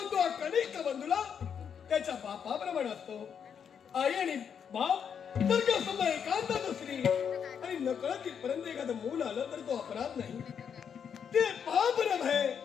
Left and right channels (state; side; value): quieter; right; 7.5 dB